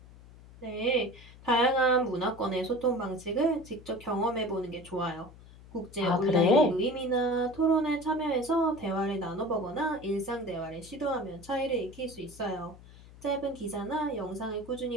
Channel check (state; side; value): noise; left; hum, 20 dB below the sound